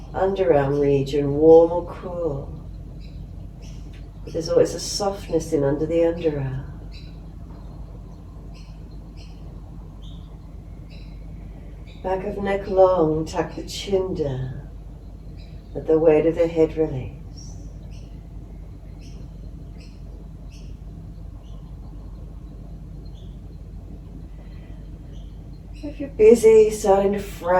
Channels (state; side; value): identical; both; correlation 1.00